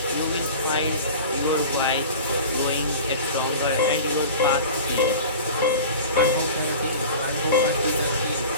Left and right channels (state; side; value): inverted; both; correlation -0.37